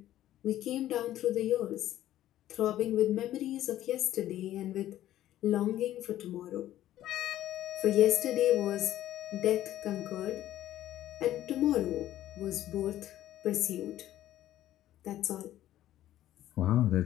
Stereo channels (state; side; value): quieter; right; 13.2 dB